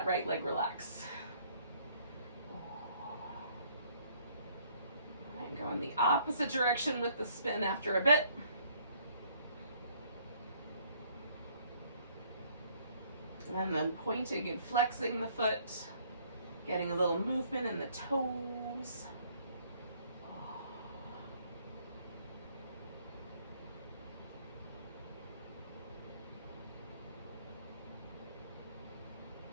right leg relax. All right, go in the opposite direction with the spin after a bit. And then pointing and flexing the foot, getting a little movement in the toes.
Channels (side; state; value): both; inverted; correlation -0.62